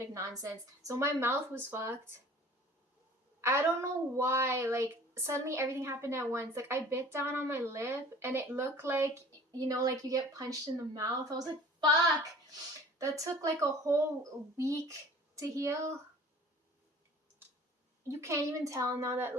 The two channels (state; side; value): normal; both; correlation 0.47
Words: nonsense. So my mouth was fucked. I don't know why. Like suddenly everything happened at once. Like I bit down on my lip and it looked like, you know, like you get punched in the mouth. I was like, fuck. That took like a whole week to heal. You can't even tell now that